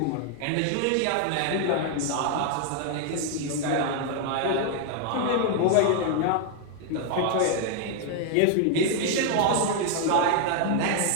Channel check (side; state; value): both; different; correlation 0.00